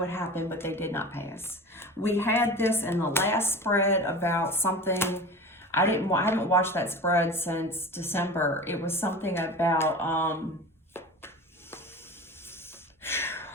happened, but they did not pass. We had this in the last spread about something. I haven't watched that spread since December. It was something about,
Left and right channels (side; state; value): both; normal; correlation 0.33